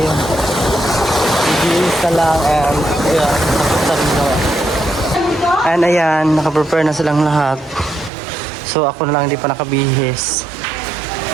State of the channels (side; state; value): left; drops out; at 8.1 s